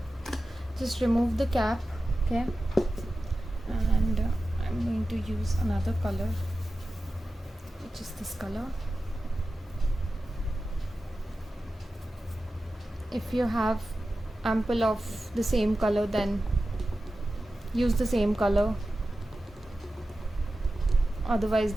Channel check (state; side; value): normal; both; correlation 0.94